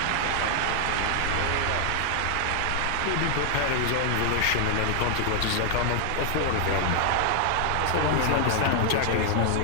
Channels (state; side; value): different; both; correlation 0.00